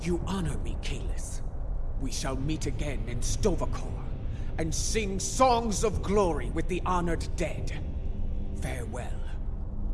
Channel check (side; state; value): both; identical; correlation 1.00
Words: You honor me, Kalis. We shall meet again in Stovokor, and sing songs of glory with the honored dead. Farewell.